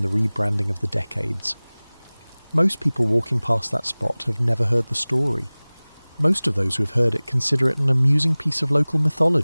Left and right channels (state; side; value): inverted; both; correlation -1.00